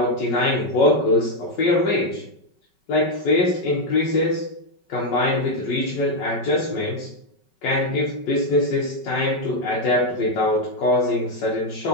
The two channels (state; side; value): late; right; 5.3 ms